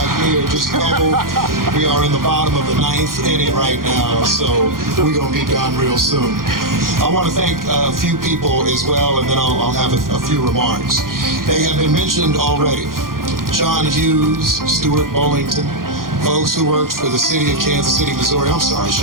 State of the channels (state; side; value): late; left; 0.91 ms